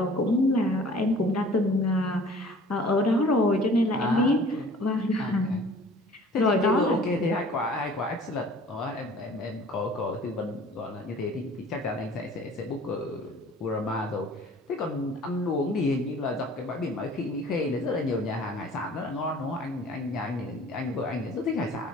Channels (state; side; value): normal; both; correlation 0.49